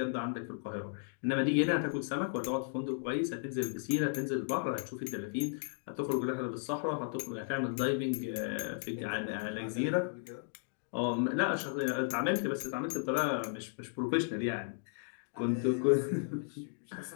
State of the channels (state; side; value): silent; right; digital silence